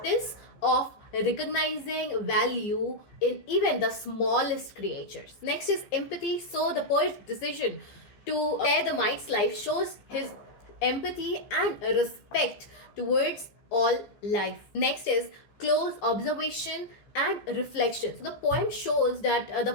of recognizing value in even the smallest creatures. Next is empathy. So the poet's decision to spare the mite's life shows his empathy and respect towards all life. Next is close observation and reflection. So the poem shows that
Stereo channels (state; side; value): late; right; 15 ms